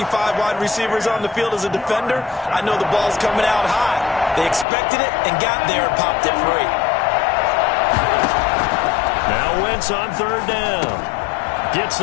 5 wide receivers on the field as a defender, I know the ball's coming out high. They expected it and got there and popped it free. Now Wentz on 3rd down. Gets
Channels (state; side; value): drops out; right; at 4.7 s